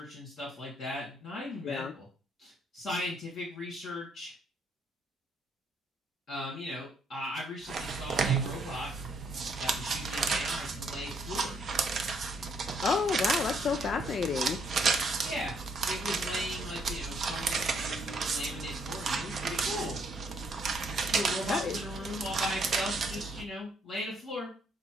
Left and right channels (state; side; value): normal; both; correlation 0.70